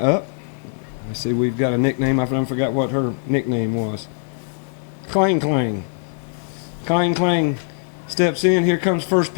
Let's see, we've got a nickname. I forgot what her nickname was. Clang Clang. Clang Clang steps in. Here comes first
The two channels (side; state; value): right; silent; digital silence